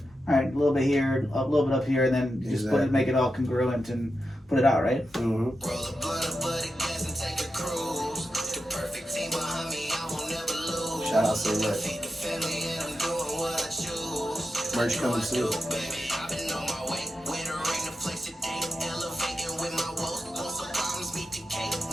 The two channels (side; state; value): both; normal; correlation 0.89